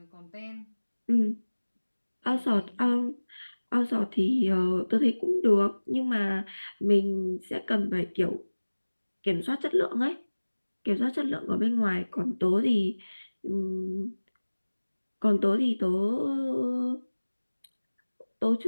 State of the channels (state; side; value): inverted; both; correlation -1.00